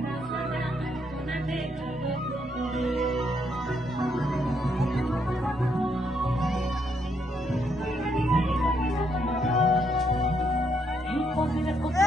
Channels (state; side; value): normal; both; correlation 0.75